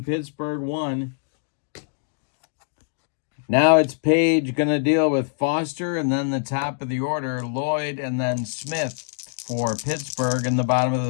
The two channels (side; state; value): right; silent; digital silence